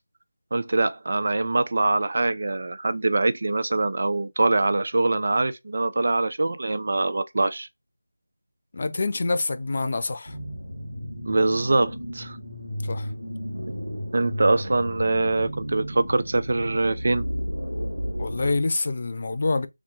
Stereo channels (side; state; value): both; inverted; correlation -0.97